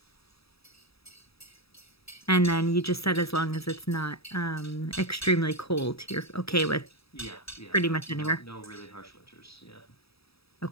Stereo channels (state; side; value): late; right; 0.77 ms